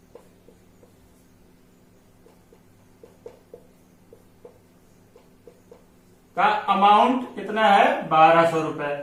का अमाउंट कितना है 1200 रुपए।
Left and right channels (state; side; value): identical; both; correlation 1.00